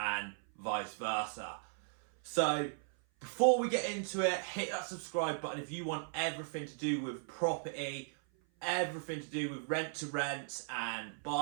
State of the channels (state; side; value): silent; left; 53 dB below the other